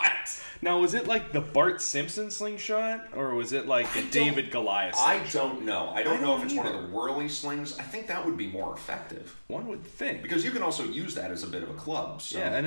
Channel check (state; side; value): inverted; both; correlation -1.00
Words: Now, was it like the Bart Simpson slingshot, or was it like the David Goliath slingshot? I don't know. I don't know if it's one of the whirly slings. I think that would be more effective. One would think, because you can also use that as a bit of a club. So. Yeah,